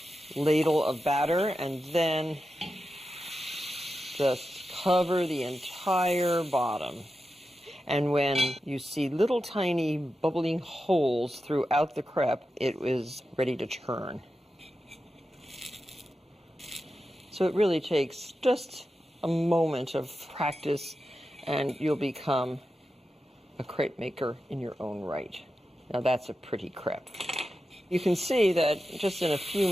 ladle of batter and then just cover the entire bottom. And when you see little tiny bubbling holes throughout the crepe, it is ready to turn. So it really takes just a moment of practice and you'll become a crepe maker in your own right. Now that's a pretty crepe. You can see that just in a few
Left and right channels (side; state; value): both; normal; correlation 0.90